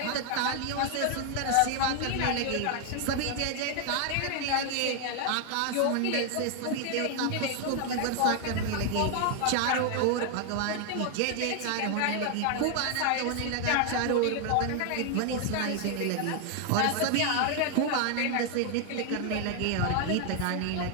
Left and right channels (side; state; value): both; different; correlation 0.00